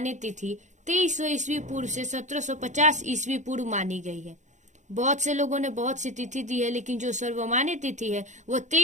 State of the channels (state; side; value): late; left; 0.35 ms